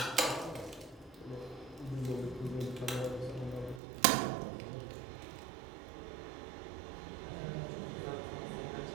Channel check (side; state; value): left; drops out; at 3.8 s